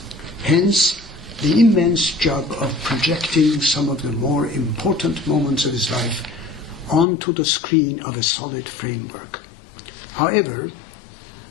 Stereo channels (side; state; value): right; drops out; at 7.1 s